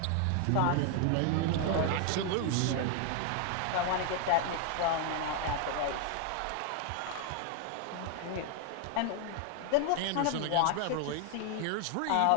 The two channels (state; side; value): different; both; correlation 0.01